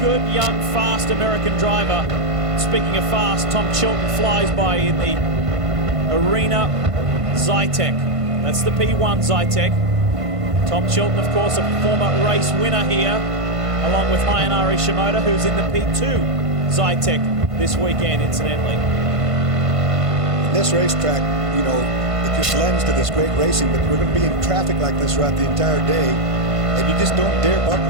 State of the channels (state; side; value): late; left; 1.5 ms